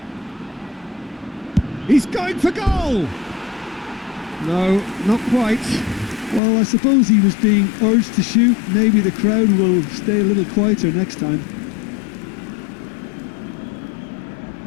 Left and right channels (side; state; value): right; drops out; at 6.4 s